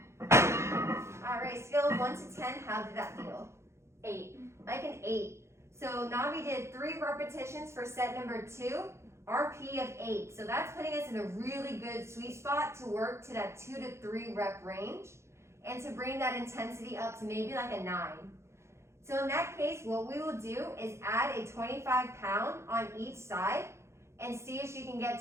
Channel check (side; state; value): left; late; 0.13 ms